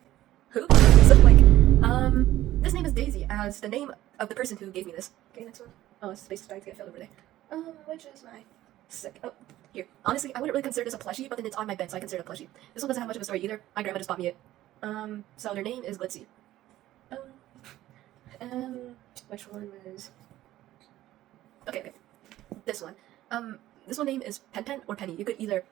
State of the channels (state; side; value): quieter; left; 14.6 dB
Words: who? So like, this name is Daisy as the name of the person who gave me this. Okay, next one. Oh, this space is starting to get filled over there. Which is my oh, here. Honestly, I wouldn't really consider this a plushie, but then it's on my bed, so I consider it a plushie. This one doesn't have much of a story either. My grandma just bought me it. So their name is Glitzy. Which one was... Okay. This one. This one name is Pen or Penny. You could either